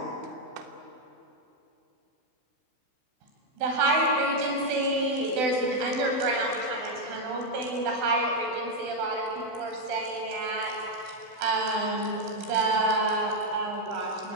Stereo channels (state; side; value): late; left; 16 ms